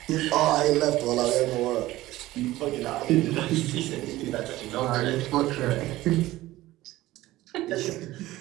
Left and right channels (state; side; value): quieter; left; 16.8 dB